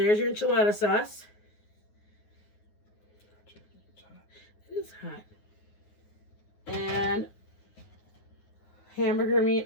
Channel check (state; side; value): late; right; 9.6 ms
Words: your enchilada sauce. It is hot. And hamburger meat